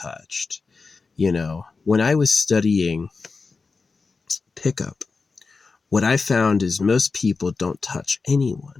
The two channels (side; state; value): right; quieter; 4.4 dB